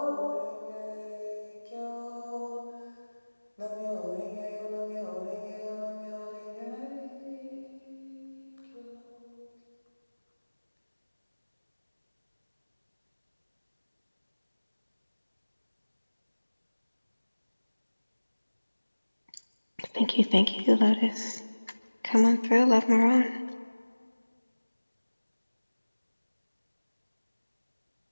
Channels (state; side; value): inverted; both; correlation -1.00